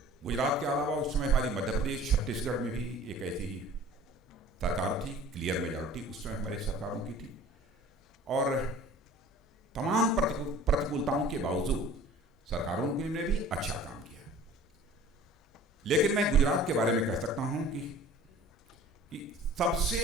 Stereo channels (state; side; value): normal; both; correlation 0.46